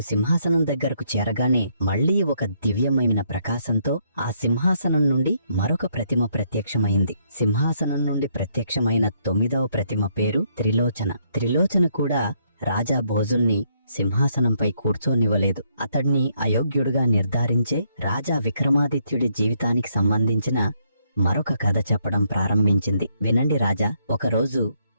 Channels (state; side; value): inverted; both; correlation -0.72